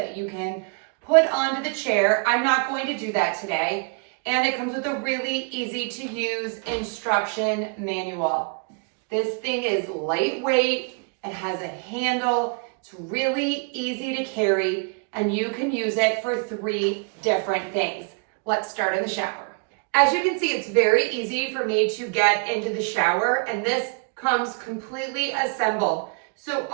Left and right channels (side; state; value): left; quieter; 37.2 dB